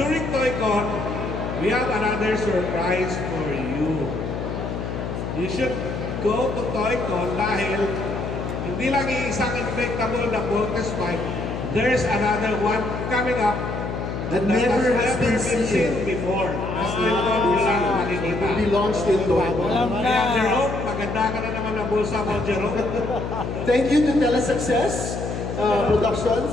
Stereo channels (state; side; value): noise; left; hum, 4 dB below the sound